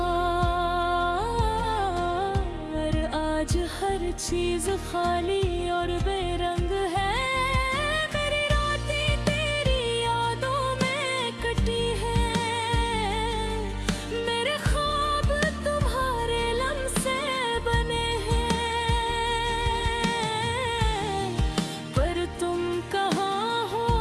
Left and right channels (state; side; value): identical; both; correlation 1.00